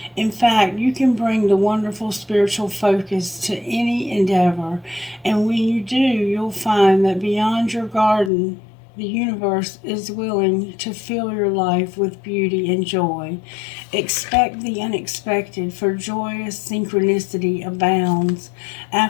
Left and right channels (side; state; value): right; drops out; at 8.3 s